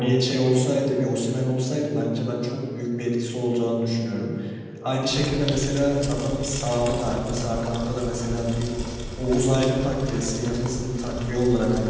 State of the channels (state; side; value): identical; both; correlation 1.00